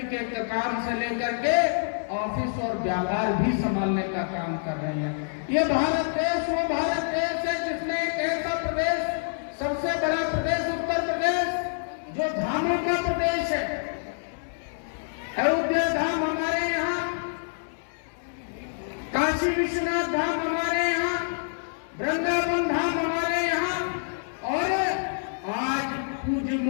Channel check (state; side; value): silent; right; 60 dB below the other